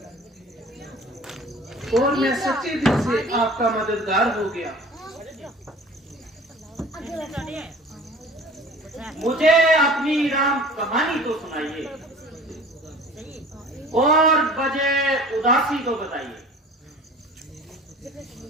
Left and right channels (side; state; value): both; normal; correlation 0.44